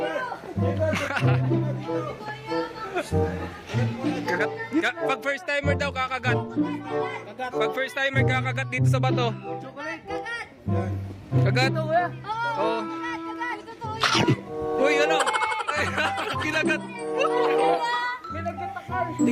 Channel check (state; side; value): identical; both; correlation 1.00